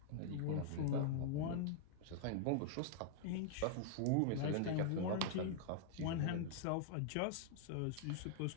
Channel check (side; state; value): both; different; correlation -0.01